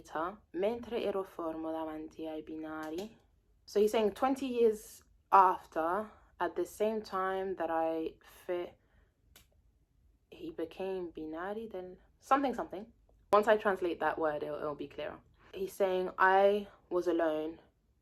mentre ero fermo davanti ai binari. So he's saying 20 years after, at the same time that he became binari, then something. Once I translate that word, it'll be clearer. He's saying I was alone.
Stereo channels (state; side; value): identical; both; correlation 1.00